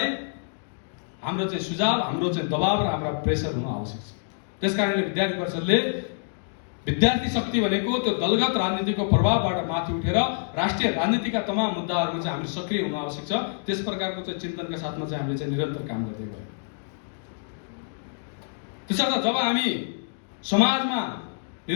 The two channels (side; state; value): right; silent; digital silence